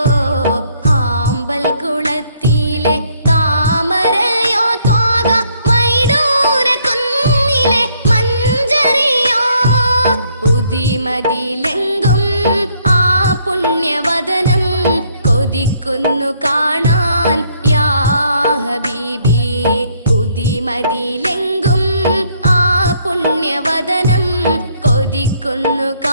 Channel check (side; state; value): both; inverted; correlation -0.67